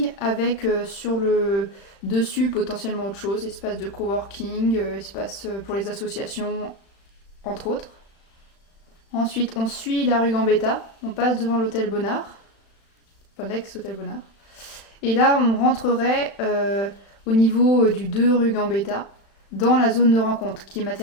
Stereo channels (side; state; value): right; late; 36 ms